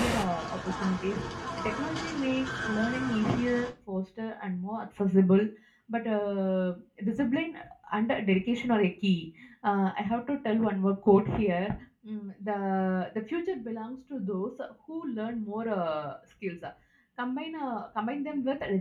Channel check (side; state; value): both; identical; correlation 1.00